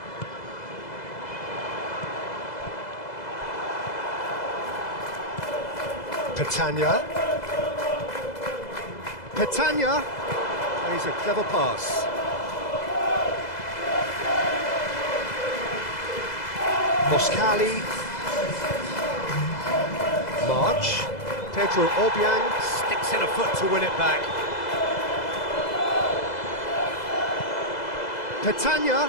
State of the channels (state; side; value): late; right; 2.0 ms